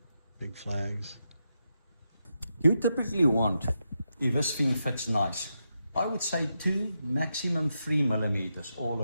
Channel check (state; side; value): inverted; both; correlation -0.85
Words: big flags. You typically want, if this thing fits nice, I would say 2, maximum 3 millimeters all